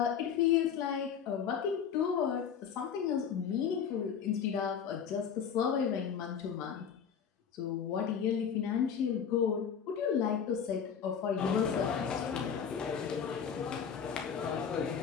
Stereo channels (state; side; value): quieter; right; 7.5 dB